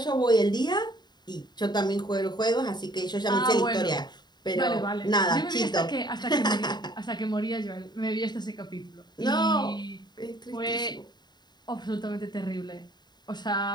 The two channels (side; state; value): right; late; 0.21 ms